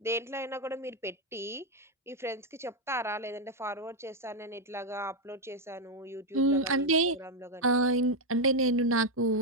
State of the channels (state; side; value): normal; both; correlation 0.03